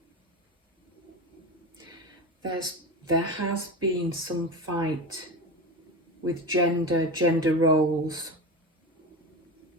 There has been some fight with gender roles.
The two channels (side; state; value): both; normal; correlation 0.24